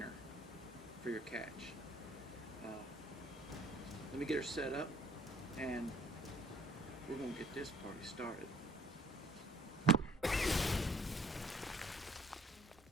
for your catch. Let me get her set up and we're going to get this party started.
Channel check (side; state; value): both; normal; correlation 0.56